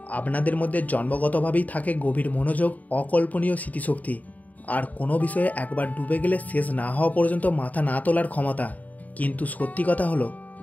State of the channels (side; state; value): right; late; 0.075 ms